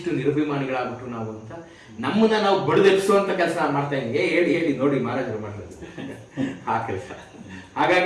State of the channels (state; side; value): identical; both; correlation 1.00